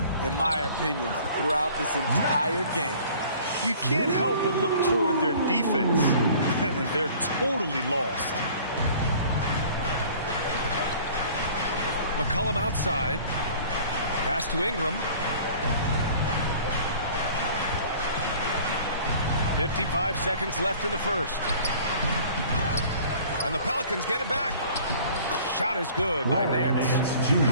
in my opinion, throughout this entire game. You can't help but look toward their defense, and they're totally lost. McCollum outside. Pass to Ingram. 55 seconds left in the first. And the Pelicans get it back. Shot is good by Nance. You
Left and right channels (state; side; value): inverted; both; correlation -0.49